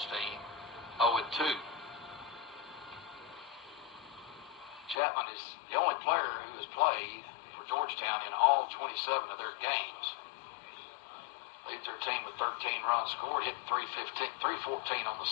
0-2. Chapman is the only player who has played for Georgetown in all 27 of their games. Leads their team with 13 runs scored, hitting 314 on the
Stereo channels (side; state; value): right; drops out; at 5.0 s